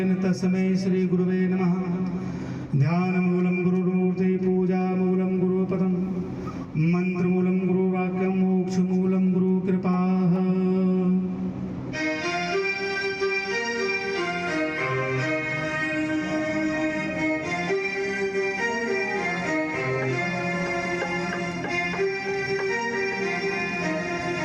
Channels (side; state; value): both; identical; correlation 1.00